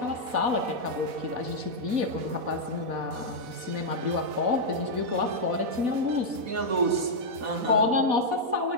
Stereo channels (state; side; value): late; left; 4.1 ms